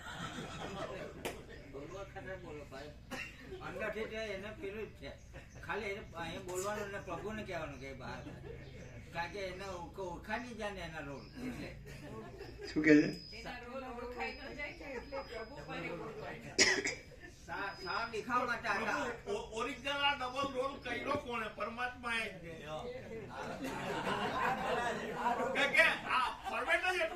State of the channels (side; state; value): both; identical; correlation 1.00